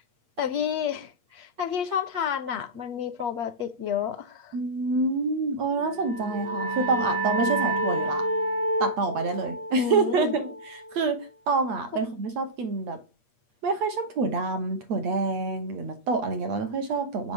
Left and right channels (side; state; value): left; late; 8.4 ms